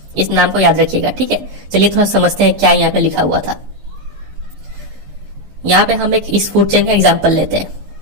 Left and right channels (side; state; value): left; late; 15 ms